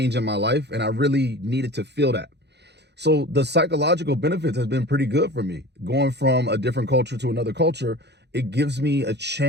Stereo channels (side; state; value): left; late; 0.49 ms